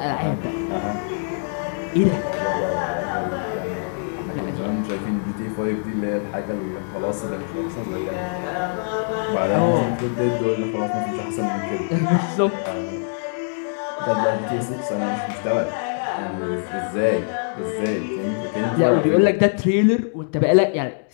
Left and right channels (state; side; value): silent; right; digital silence